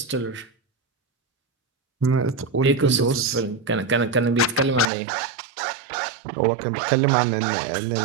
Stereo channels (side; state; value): left; drops out; at 4.9 s